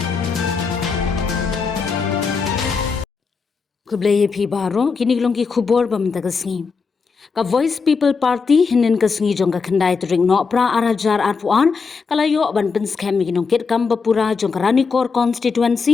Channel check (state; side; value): quieter; right; 5.1 dB